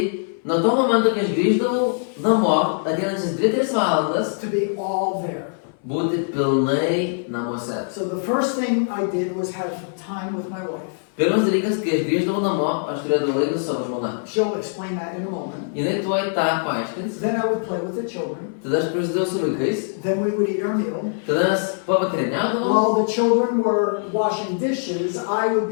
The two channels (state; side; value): silent; right; 60 dB below the other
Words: nuo to momento, kai aš grįždavau namo, ateinančias 2-3 valandas, to be all there. būti pilnai namuose. So the first thing I did was have time with my wife. Pirmas dalykas, kai aš grįždavau namo, aš turėdavau laiką su savo žmona. She'll explain that in a moment. Jinai tuoj tą paaiškins, Then I would play with the children. tada aš prasidėjau su vaikais, Then we would eat our meal. tada mes pavakarieniaudavom. While the children were washing dishes, I would